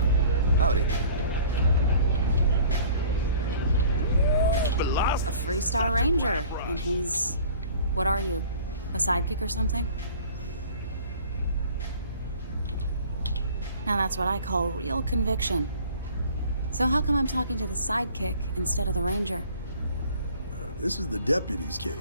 Howdy. A Freestar Ranger, and he's... What are you? A sidekick or something? Now that's what I call real conviction. So how come I'm talking to the sidekick instead of the Ranger? This is the deputy's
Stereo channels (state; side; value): inverted; both; correlation -0.48